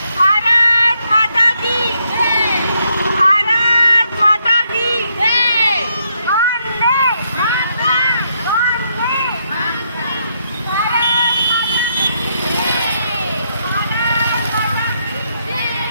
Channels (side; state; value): both; inverted; correlation -0.76